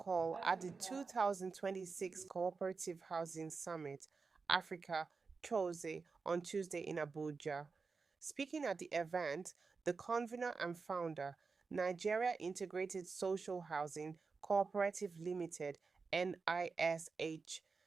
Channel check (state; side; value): quieter; left; 4.6 dB